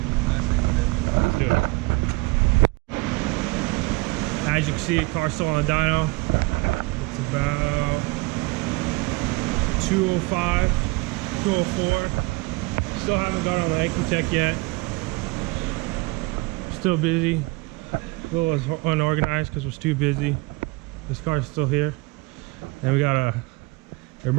messing with it. Let's do it. As you can see, the car's still on the dyno. It's about 205, 204. Still haven't got on the Ecotech yet. Still busy. A little unorganized because we're too busy. This car's still here. And we got a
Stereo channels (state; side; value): quieter; left; 25.1 dB